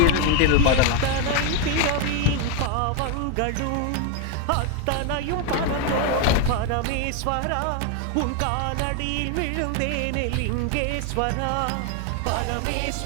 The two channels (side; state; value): both; different; correlation 0.01